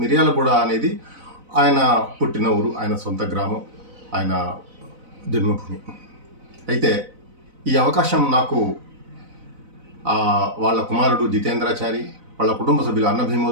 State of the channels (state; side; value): late; left; 4.0 ms